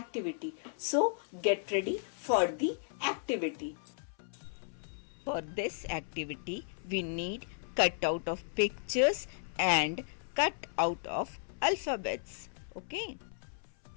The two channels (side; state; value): right; silent; 55 dB below the other